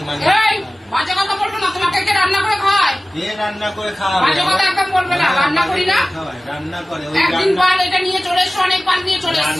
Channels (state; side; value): normal; both; correlation 0.97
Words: বাজে কথা বলবো না। তোমাকে কে রান্না করে খাওয়ায়? কে রান্না করে খাওয়াবে? বাজে কথা একদম বলবে না। রান্না করি না, রান্না করে। একদিন বার এটা নিয়ে চলে এসো, অনেকবার নিয়ে চলে